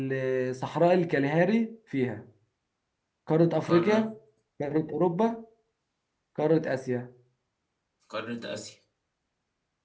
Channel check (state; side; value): identical; both; correlation 1.00